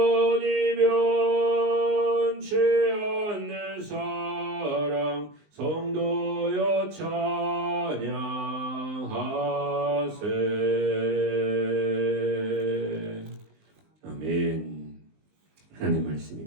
변치 않는 사랑 성도여 찬양하세. 아멘. 하나님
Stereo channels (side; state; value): left; late; 19 ms